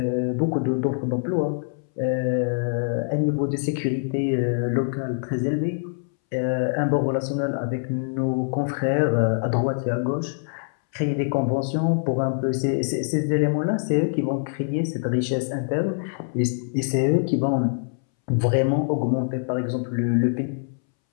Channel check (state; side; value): silent; right; 62 dB below the other